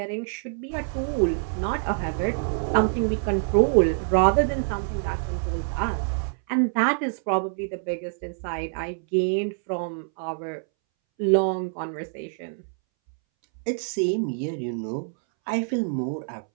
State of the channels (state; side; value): silent; left; 61 dB below the other